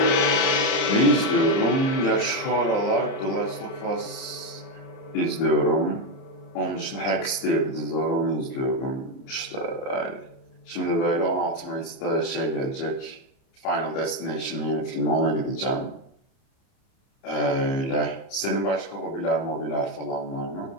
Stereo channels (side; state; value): right; late; 30 ms